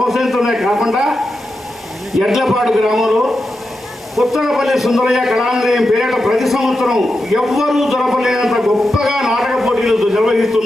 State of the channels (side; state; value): both; normal; correlation 0.89